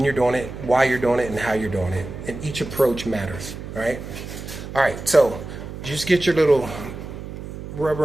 you're doing it, why you're doing it, and how you're doing it. And each approach matters, all right? All right, so just get your little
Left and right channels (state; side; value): noise; right; hum, 10 dB below the sound